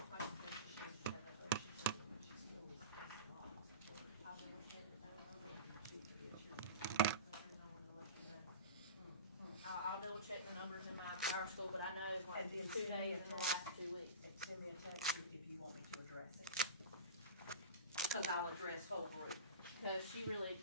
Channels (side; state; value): both; inverted; correlation -0.30